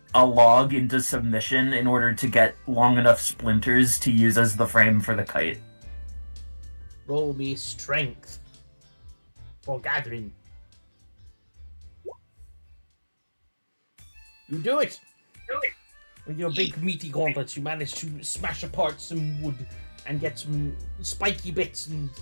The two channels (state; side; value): inverted; both; correlation -1.00